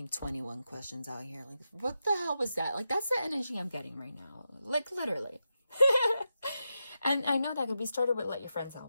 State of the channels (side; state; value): both; inverted; correlation -0.88